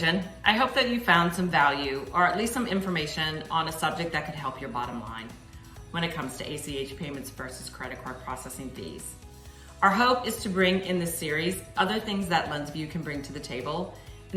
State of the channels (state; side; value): identical; both; correlation 1.00